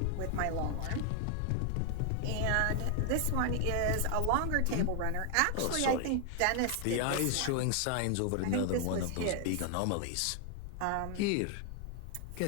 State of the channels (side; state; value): both; different; correlation 0.00